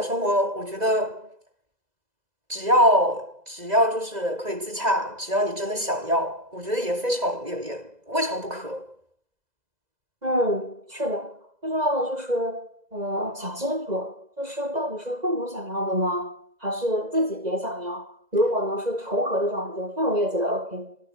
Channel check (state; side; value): late; left; 2.0 ms